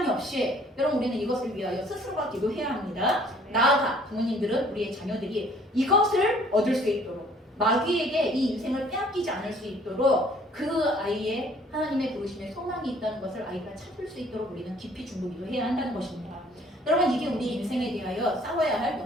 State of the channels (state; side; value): normal; both; correlation 0.57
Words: 없이 여러분 우리는 이것을 위하여 스스로가 기도해야 합니다. 나아가 부모님들은 우리의 자녀들이 이것을 얻을 수 있도록 마귀에게 이 인생을 빼앗기지 않을 수 있도록 그 아이의 하나님의 부르심에 소망이 있다는 것을 아이가 찾을 수 있도록 우리는 깊이 중보기도해야 한다는 것입니다. 여러분 이게 우리 인생에 대하여 싸워야 할